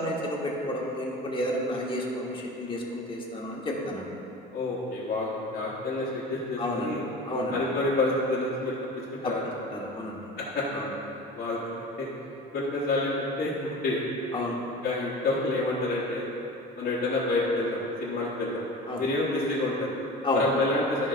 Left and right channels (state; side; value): normal; both; correlation 0.35